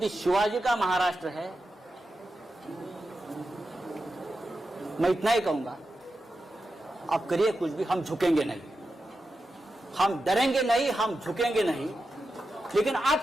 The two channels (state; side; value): normal; both; correlation 0.90